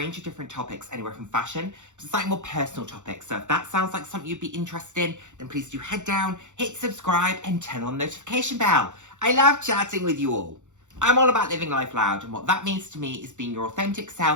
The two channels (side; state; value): left; late; 0.85 ms